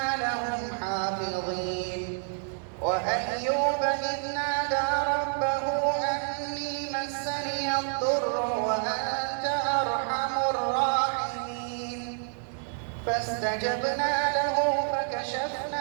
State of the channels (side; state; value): left; silent; digital silence